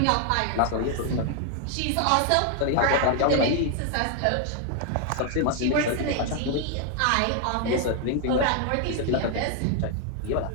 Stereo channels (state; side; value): different; both; correlation 0.00